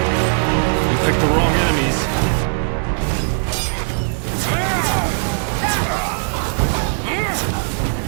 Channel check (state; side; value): silent; left; digital silence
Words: You picked the wrong enemies.